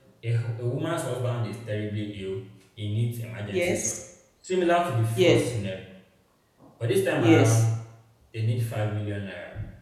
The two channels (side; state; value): both; identical; correlation 1.00